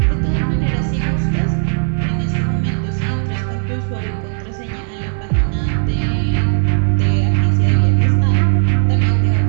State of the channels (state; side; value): silent; left; digital silence